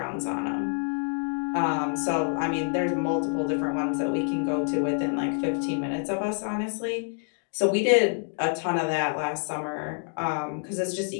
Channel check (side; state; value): right; silent; 60 dB below the other